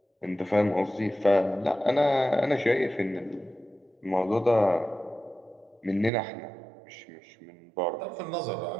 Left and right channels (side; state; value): left; drops out; at 6.1 s